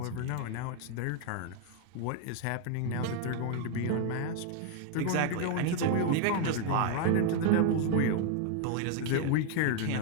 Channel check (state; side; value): different; both; correlation 0.00